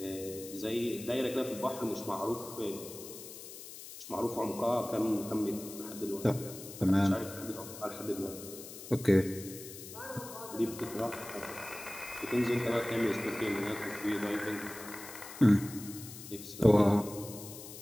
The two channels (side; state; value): left; noise; hiss, 13 dB below the sound